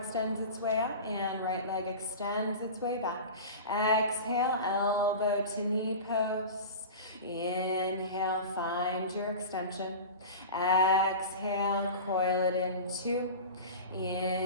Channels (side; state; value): both; inverted; correlation -0.31